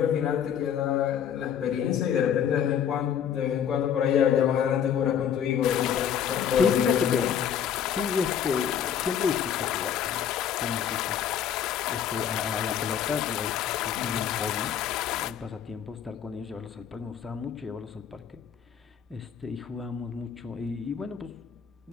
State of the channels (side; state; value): right; quieter; 8.7 dB